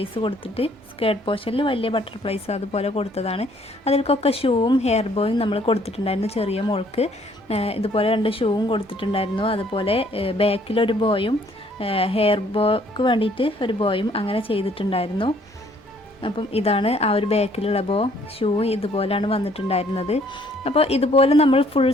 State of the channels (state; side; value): normal; both; correlation 0.62